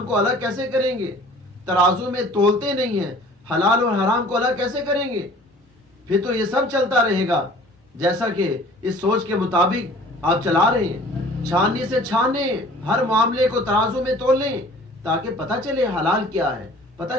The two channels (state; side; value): normal; both; correlation 0.49